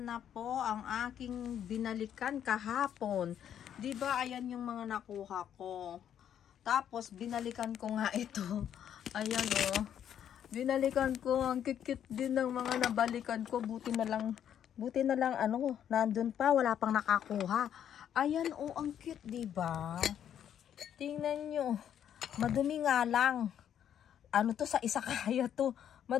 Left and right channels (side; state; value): right; quieter; 9.6 dB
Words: na po ang aking binalikan kahapon. 'Di ba? Ayan yung mga nakuha ko. Tapos binalikan ko nga ito. Ayan oh. Binalikan ko, ang kikit din ng mga nabalikan ko. Buti na lang ano, nandun pa, wala pang nakakuha. Ayan oh, ang cute, 'di ba? Tingnan nyo. Madumi nga lang. Ano to, sa Izakaya to.